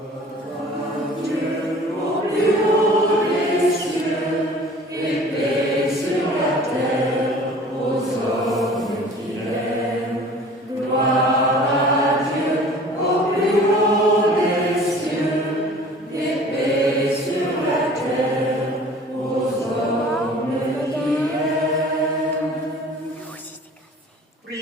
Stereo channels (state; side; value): normal; both; correlation 0.47